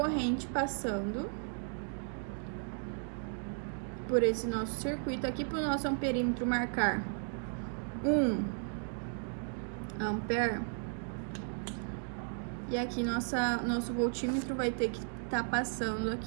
passando por esse nosso circuito. Aqui, para o nosso amperímetro marcar 1 ampere, e aqui nosso voltímetro vai ter que estar passando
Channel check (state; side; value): silent; left; 54 dB below the other